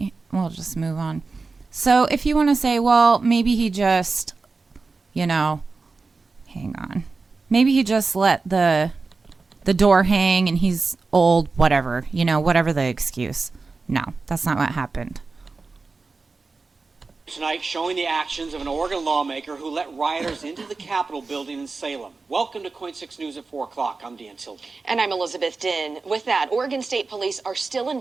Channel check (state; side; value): quieter; left; 4.1 dB